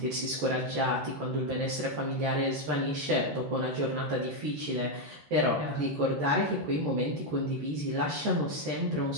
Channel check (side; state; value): left; late; 14 ms